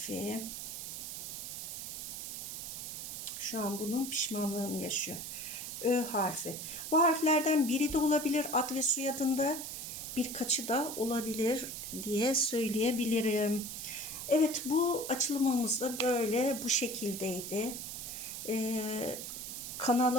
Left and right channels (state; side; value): noise; right; hiss, 7 dB below the sound